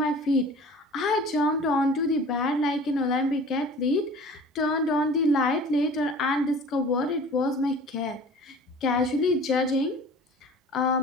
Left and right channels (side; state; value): both; normal; correlation 0.43